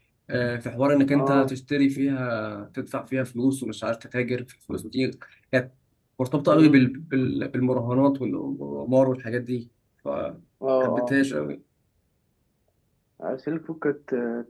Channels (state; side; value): identical; both; correlation 1.00